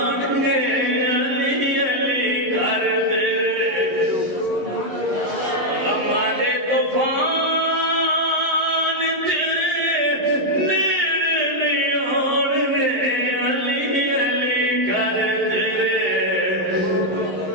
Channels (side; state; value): left; late; 11 ms